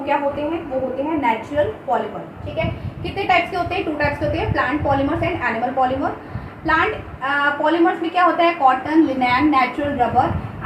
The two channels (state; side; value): identical; both; correlation 1.00